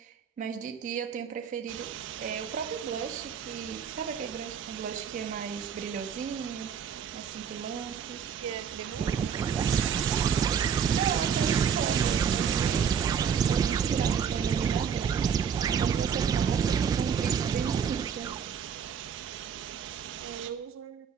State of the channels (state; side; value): quieter; left; 7.4 dB